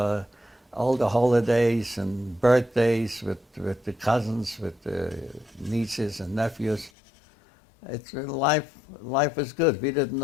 all the holidays and birthdays with the cousins, with the nieces and nephews. Life was good. We didn't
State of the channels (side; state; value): right; drops out; at 6.9 s